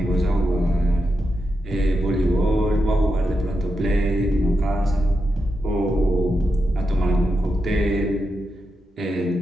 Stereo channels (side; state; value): both; normal; correlation 0.87